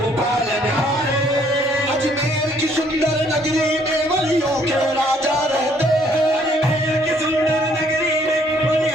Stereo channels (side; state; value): both; normal; correlation 0.64